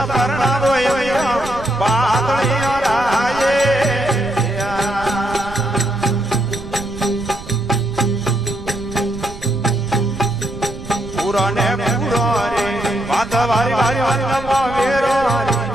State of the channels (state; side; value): noise; right; rumble, 13 dB below the sound